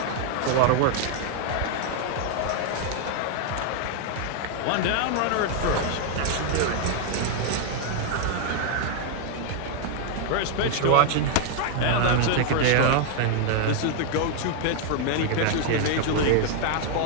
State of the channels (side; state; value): both; different; correlation 0.00